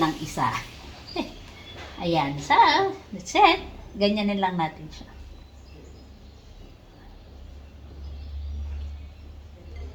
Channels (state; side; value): identical; both; correlation 1.00